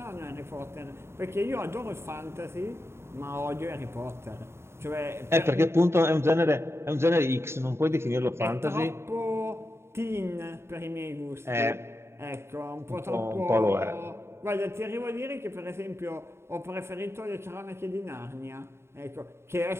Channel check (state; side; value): late; left; 0.12 ms